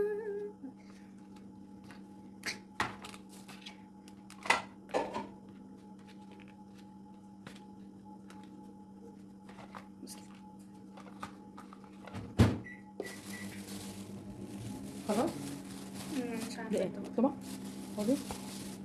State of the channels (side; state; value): both; identical; correlation 1.00